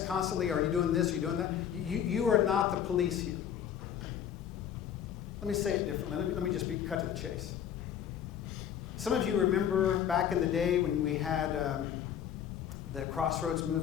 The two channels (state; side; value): quieter; right; 9.3 dB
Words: constantly, are you doing this, are you doing that? You are not the police here. Let me say it differently. Let me just cut to the chase. Some of you remember back in the day when we had the Crossroads